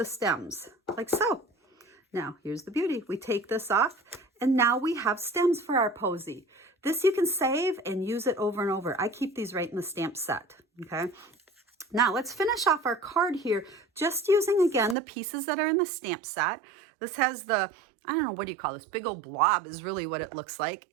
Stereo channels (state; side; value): drops out; left; at 15.0 s